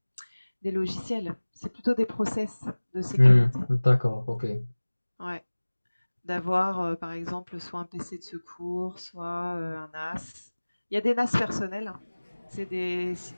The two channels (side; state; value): both; inverted; correlation -1.00